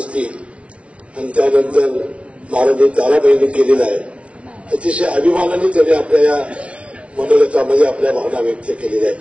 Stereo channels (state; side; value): late; left; 0.062 ms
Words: आणि त्यानंतर महाराणी ताराबाईंनी केलेलं आहे. अतिशय अभिमानाने त्यांनी आपल्या या मनोगतामध्ये आपल्या भावना व्यक्त केलेल्या